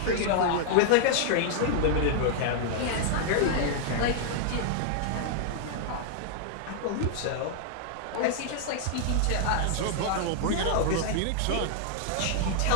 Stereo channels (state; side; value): different; both; correlation -0.01